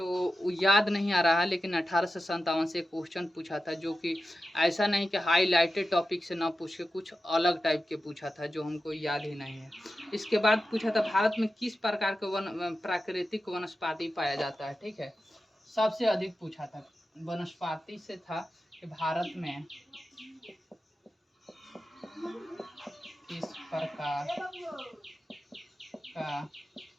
याद नहीं आ रहा, लेकिन 1857 से क्वेश्चन पूछा था, जो कि ऐसा नहीं कि हाईलाइटेड टॉपिक से ना पूछ के कुछ अलग टाइप के पूछा था, जो हमको याद ही नहीं है। इसके बाद पूछा था, भारत में किस प्रकार के प्राकृतिक वनस्पति पाया जाता है, ठीक है, सबसे अधिक पूछा था। वनस्पति से था कि भारत में किस प्रकार का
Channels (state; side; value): normal; both; correlation 0.92